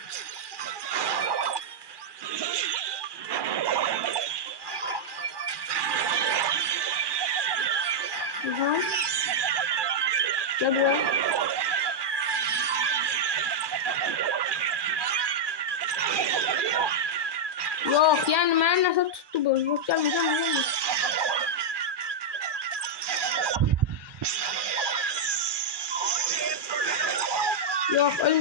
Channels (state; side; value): late; left; 1.2 ms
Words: Gel buraya. Yok yani ben nasıl tuttu bu? Yok gelme. Yok